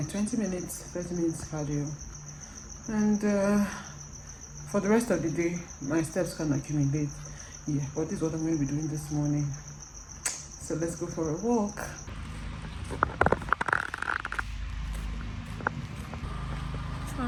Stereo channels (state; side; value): identical; both; correlation 1.00